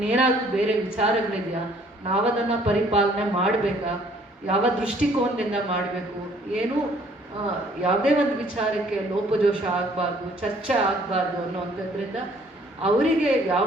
ಬೇರೆ ವಿಚಾರಗಳಿದೆಯಾ? ನಾವದನ್ನು ಪರಿಪಾಲನೆ ಮಾಡಬೇಕಾ? ಯಾವ ದೃಷ್ಟಿಕೋನದಿಂದ ಮಾಡಬೇಕು? ಏನೂ ಯಾವುದೇ ಒಂದು ವಿಚಾರಕ್ಕೆ ಲೋಪದೋಷ ಆಗಬಾರ್ದು, ಚರ್ಚೆ ಆಗಬಾರ್ದು ಅನ್ನೋವಂಥದ್ರಿಂದ ಅವರಿಗೆ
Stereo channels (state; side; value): normal; both; correlation 0.60